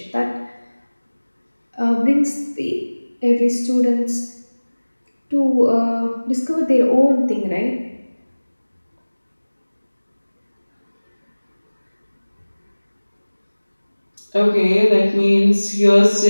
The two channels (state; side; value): inverted; both; correlation -1.00